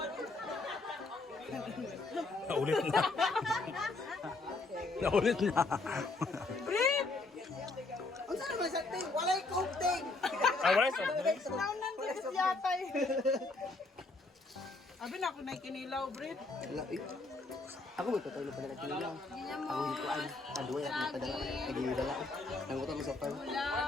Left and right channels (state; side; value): quieter; right; 3.4 dB